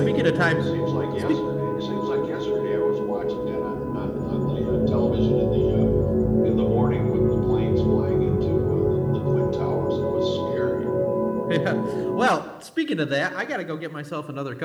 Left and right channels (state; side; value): identical; both; correlation 1.00